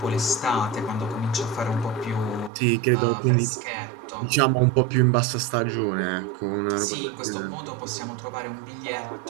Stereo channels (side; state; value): left; drops out; at 2.5 s